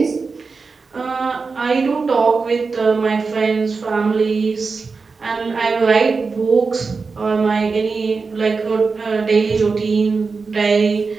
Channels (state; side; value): quieter; left; 4.6 dB